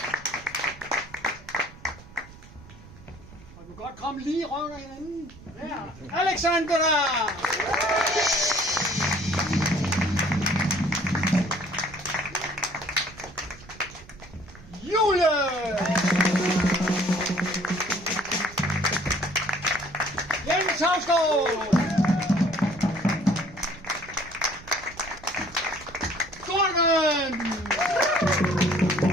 Og du kan godt komme lige rundt af hinanden. Der. Alexandra! Julie! Jens Havsgaard! Gordon!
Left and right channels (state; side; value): noise; right; rumble, 19 dB below the sound